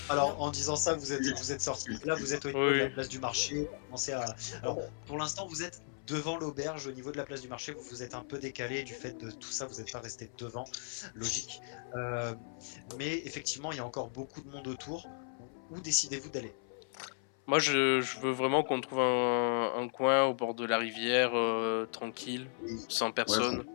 Alors, en disant ça, vous êtes sorti. Là, vous êtes au niveau de la Oui. place du marché. Vous commencez à... Alors, pour l'instant, vous êtes devant l'auberge, au niveau de la place du marché. Vous vous êtes un peu décalé du fait de tout ça. Vous n'êtes pas resté devant, logique. Mais effectivement, il y a encore beaucoup de monde autour. Où décidez-vous d'aller? Moi, je veux vraiment qu'on trouve un coin au bord de la rivière, tranquille, sans personne.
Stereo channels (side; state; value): right; silent; 54 dB below the other